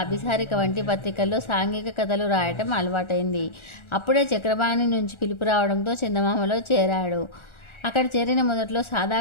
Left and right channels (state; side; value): late; right; 1.4 ms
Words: అభిసారిక వంటి పత్రికల్లో సాంఘిక కథలు రాయటం అలవాటైంది. అప్పుడే చక్రపాణి నుంచి పిలుపు రావడంతో చందమామలో చేరాడు. అక్కడ చేరిన మొదట్లో సాదా